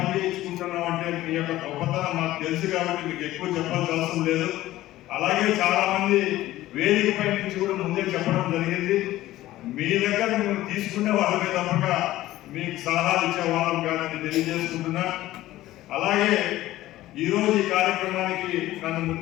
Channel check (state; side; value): quieter; right; 15.6 dB